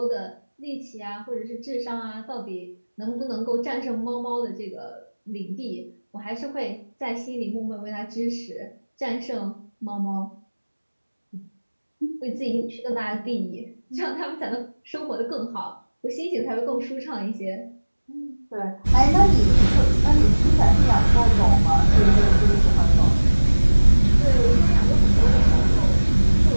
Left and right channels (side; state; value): both; inverted; correlation -1.00